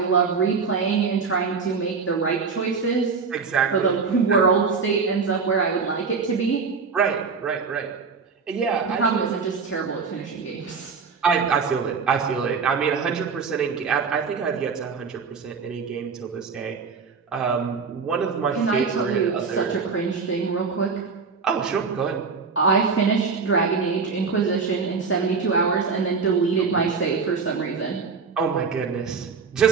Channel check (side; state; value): left; quieter; 5.2 dB